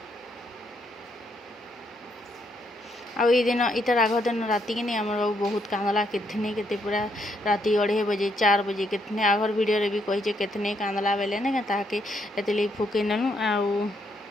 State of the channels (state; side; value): normal; both; correlation 0.75